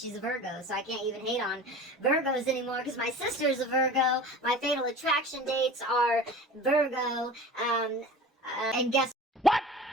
a Virgo, so I can't even hate on Virgos anymore, because my sister's a Virgo, my fatal attraction dates are Virgo, and guess what?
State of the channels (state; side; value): normal; both; correlation 0.37